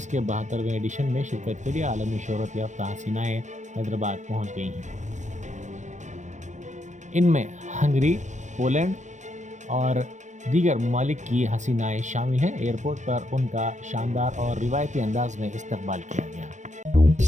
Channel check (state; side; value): late; left; 0.35 ms